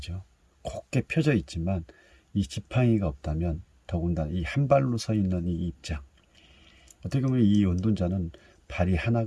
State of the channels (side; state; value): both; identical; correlation 1.00